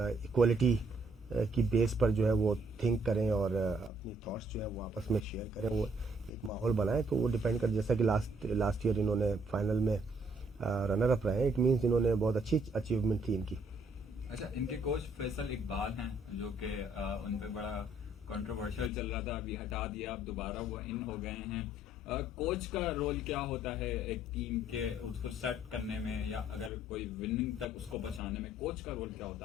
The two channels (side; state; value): both; normal; correlation 0.66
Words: इक्वलिटी की बेस पर जो है वो थिंक करें और अपनी थॉट्स जो है वो आपस में शेयर करें, वो एक माहौल बनाएं। तो वो डिपेंड कर, जैसा कि लास्ट ईयर इन्होंने फाइनल में रनर अप रहे, इट मीन्स इन्होंने बहुत अच्छी अचीवमेंट थी इनकी। अच्छा, इनके कोच फैसल इकबाल हैं जो कि उन पे बड़ा कंट्रोवर्शियल चल रहा था, अभी हटा दिया, अब दोबारा वो इन हो गए हैं। कोच का रोल क्या होता है एक टीम के उसको सेट करने में, या अगर कोई विनिंग तक उसको पहुंचाने में कोच का रोल क्या होता